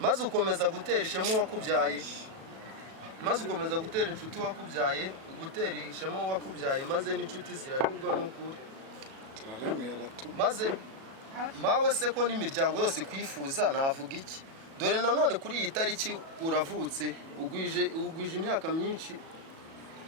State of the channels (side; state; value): left; late; 37 ms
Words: maze ukomeza gutera ishema uwakubyaye maze ukomeza gutera inshuti wakubyaye gutera ishema uwakubyaye maze n'inshuti ziranyurwa n'ukuri maze mawe se ko n'imiryango yose kwifuza navuga iki dore nanone kuri iyi tariki uravutse ugwije imyaka